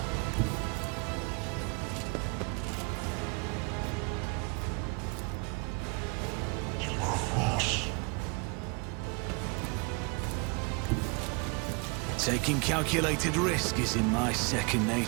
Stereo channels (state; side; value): quieter; left; 31.4 dB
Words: Taking calculated risk is in my second